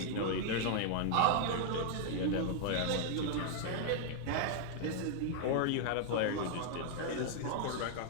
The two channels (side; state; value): both; different; correlation -0.01